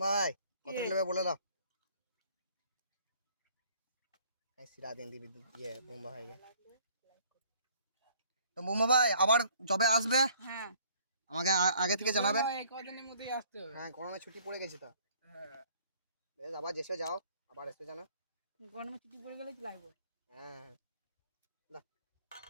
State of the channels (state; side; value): inverted; both; correlation -0.57